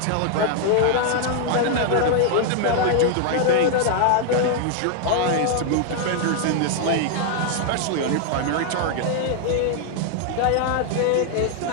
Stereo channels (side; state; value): both; different; correlation 0.00